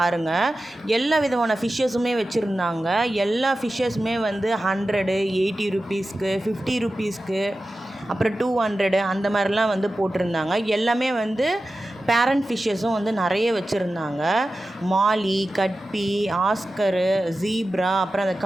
எல்லா விதமான ஃபிஷ்ஷஸுமே வச்சுருந்தாங்க. எல்லா ஃபிஷ்ஷஸுமே வந்து 100, 80 ருபீஸ்க்கு, 50 ருபீஸ்க்கு, அப்புறம் 200 அந்த மாதிரிலாம் வந்து போட்டிருந்தாங்க. எல்லாமே வந்து பேரண்ட் ஃபிஷ்ஷஸும் வந்து நிறைய வச்சுருந்தாங்க. மாலி, கட்பி, ஆஸ்கரு, ஜீப்ரா, அப்புறம் அந்த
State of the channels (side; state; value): both; normal; correlation 0.94